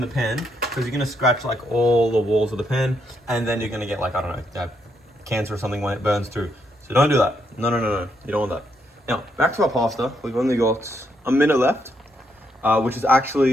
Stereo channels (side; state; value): both; normal; correlation 0.77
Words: the pan, because you're gonna scratch like all the walls of the pan, and then you're gonna get like, I don't know, cancer or something when it burns through. So don't do that. No. You don't want that. Now back to our pasta. We've only got a minute left, which is